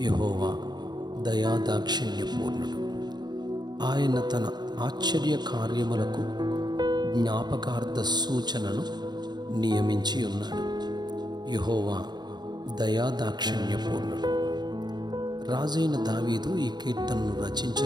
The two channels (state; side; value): late; left; 0.20 ms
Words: యెహోవా దయాదాక్షిణ్యపూర్ణుడు. ఆయన తన ఆశ్చర్య కార్యములకు జ్ఞాపకార్థ సూచనను నియమించి ఉన్నాడు. యెహోవా దయాదాక్షిణ్యపూర్ణుడు. రాజైన దావీదు ఈ కీర్తనను